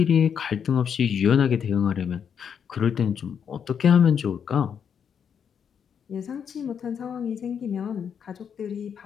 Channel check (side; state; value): right; quieter; 7.6 dB